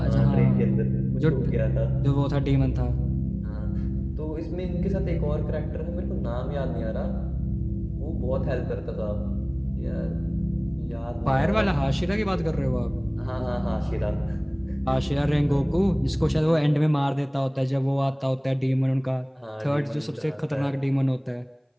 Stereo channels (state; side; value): identical; both; correlation 1.00